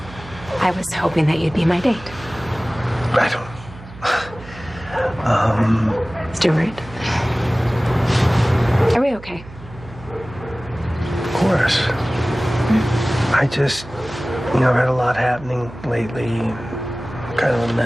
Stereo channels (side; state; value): right; noise; hum, 17 dB below the sound